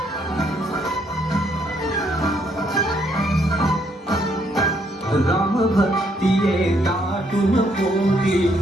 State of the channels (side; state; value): both; normal; correlation 0.71